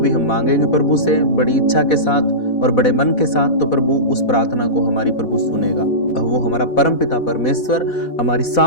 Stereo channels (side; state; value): right; late; 4.1 ms